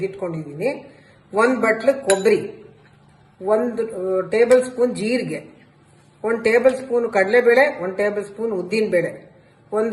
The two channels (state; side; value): identical; both; correlation 1.00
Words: 1 ಬಟ್ಲು ಕೊಬ್ಬರಿ, 1 ಟೇಬಲ್ ಸ್ಪೂನ್ ಜೀರಿಗೆ, 1 ಟೇಬಲ್ ಸ್ಪೂನ್ ಕಡಲೆಬೇಳೆ, 1 ಟೇಬಲ್ ಸ್ಪೂನ್ ಉದ್ದಿನಬೇಳೆ,